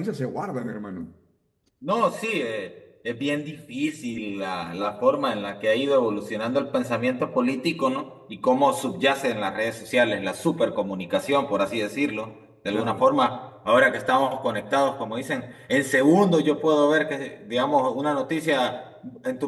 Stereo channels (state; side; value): identical; both; correlation 1.00